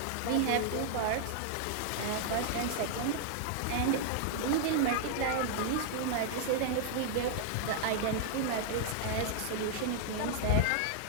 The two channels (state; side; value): different; both; correlation -0.01